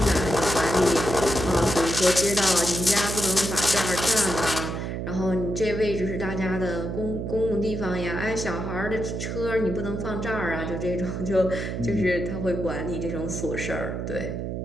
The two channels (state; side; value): noise; right; hum, 4 dB below the sound